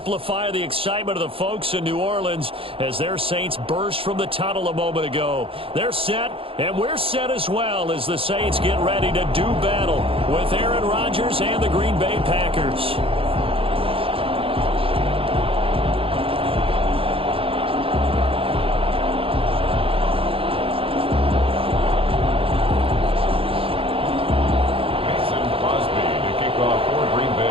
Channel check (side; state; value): left; late; 0.27 ms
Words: the excitement of the folks in New Orleans as their Saints burst from the tunnel a moment ago. They're set, and we're set as well as the Saints get ready to do battle with Aaron Rodgers and the Green Bay Packers.